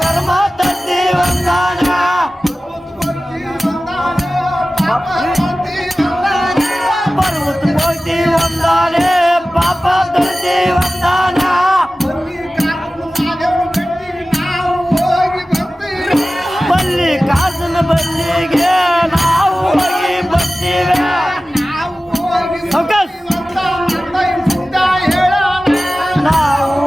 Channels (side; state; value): both; normal; correlation 0.96